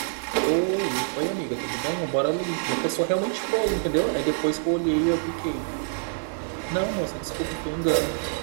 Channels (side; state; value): left; silent; digital silence